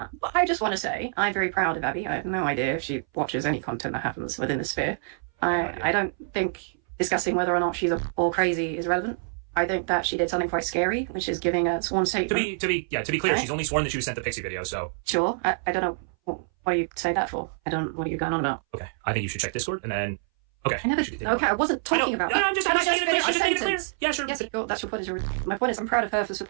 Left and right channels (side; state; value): left; silent; 59 dB below the other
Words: I just want to say, I'm very proud of Abby. I have no idea if she watches any content that happens within the sphere. I don't think discussing whether or not she's all crazy is relevant. I think that she did something quite scary, which is giving a sworn statement. To be clear, she's only sworn that she was sent the Pixie video, so... Sure. I don't know. What do you say that for? What are you going on about? Okay. I think you should check Discord, and then... Okay. I wasn't talking about that. I'm just making it clear. Yeah, sure. Yes, that's your point. My point is, I'm proud of her for